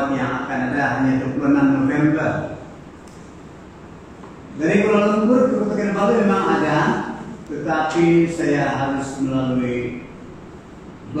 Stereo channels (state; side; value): identical; both; correlation 1.00